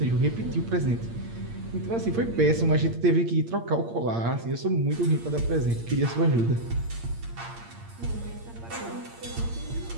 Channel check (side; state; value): left; late; 8.7 ms